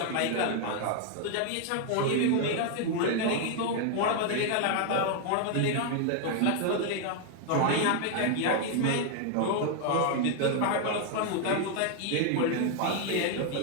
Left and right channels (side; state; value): both; different; correlation 0.00